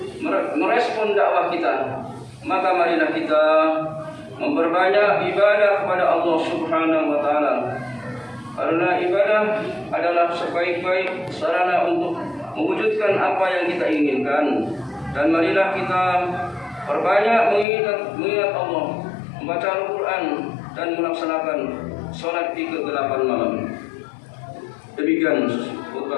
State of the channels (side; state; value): right; drops out; at 17.7 s